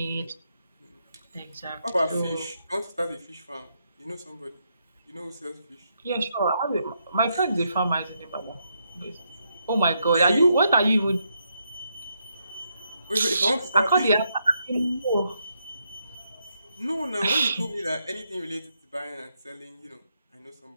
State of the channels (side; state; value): both; inverted; correlation -0.79